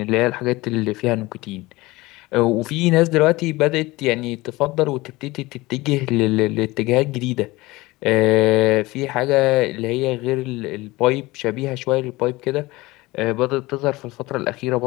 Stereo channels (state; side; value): quieter; right; 20.6 dB